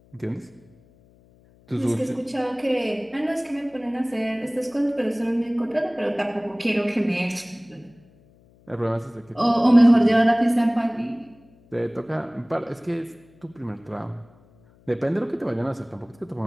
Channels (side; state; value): left; noise; hum, 29 dB below the sound